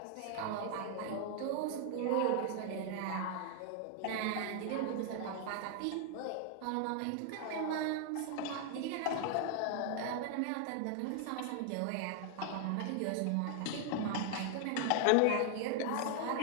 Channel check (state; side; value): different; both; correlation 0.00